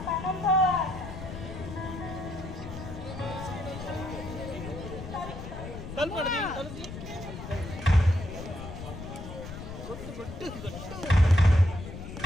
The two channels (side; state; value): left; noise; rumble, 10 dB below the sound